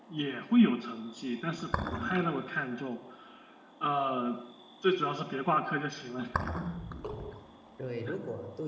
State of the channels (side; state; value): both; identical; correlation 1.00